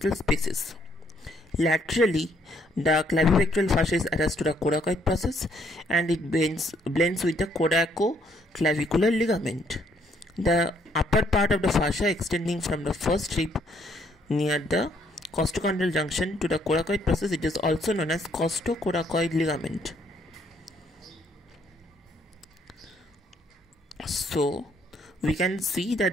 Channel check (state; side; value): normal; both; correlation 0.68